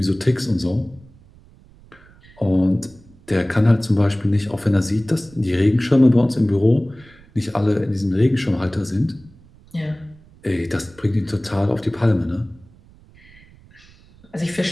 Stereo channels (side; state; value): right; noise; rumble, 26 dB below the sound